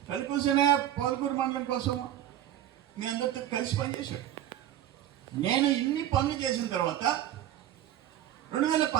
కలికూసనే పోలకూరు మండలం కోసం మీ అందరితో కలిసి పనిచేశాడు. నేను ఇన్ని పనులు చేసిన తర్వాత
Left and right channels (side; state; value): left; quieter; 12.0 dB